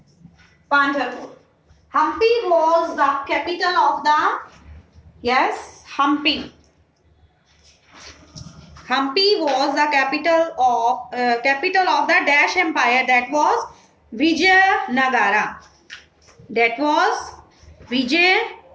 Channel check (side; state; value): both; identical; correlation 1.00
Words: Pandharpur. Hampi was the capital of the, yes, Hampi. Hampi was the capital of the Dash Empire, that was Vijayanagara. That was